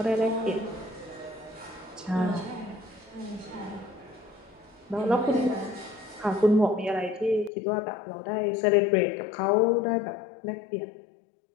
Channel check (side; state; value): right; drops out; at 7.5 s